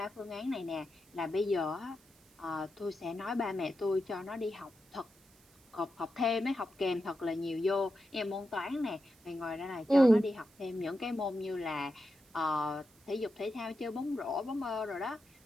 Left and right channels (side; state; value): right; noise; hiss, 29 dB below the sound